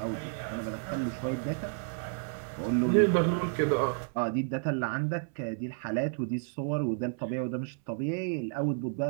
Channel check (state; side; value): silent; left; 57 dB below the other